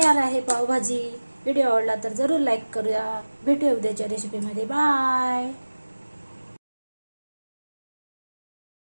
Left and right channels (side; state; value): both; inverted; correlation -1.00